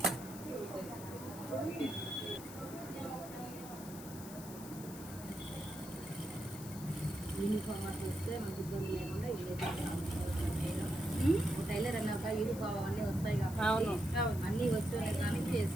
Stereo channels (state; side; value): noise; left; hiss, 14 dB below the sound